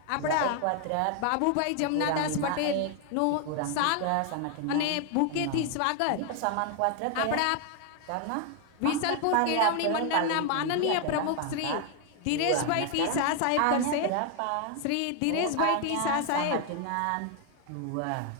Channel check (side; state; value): both; different; correlation 0.00